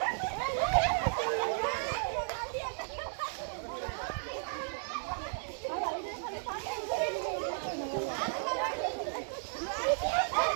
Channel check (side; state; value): left; silent; digital silence